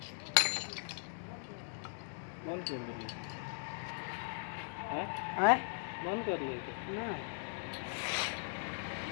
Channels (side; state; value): right; silent; digital silence